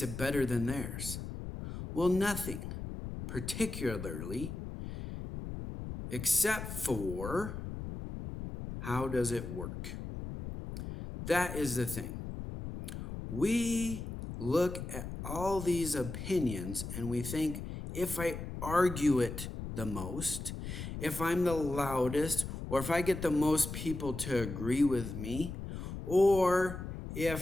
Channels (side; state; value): left; noise; rumble, 7 dB below the sound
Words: better than theirs? Well, nothing, particularly, except for how does it work? That is the thing. We look at all these opinions and we think, if I argue it the most, if I'm the loudest, or if I get the most people to agree with me, or